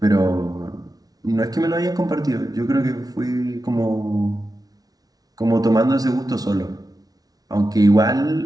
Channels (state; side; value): late; left; 0.18 ms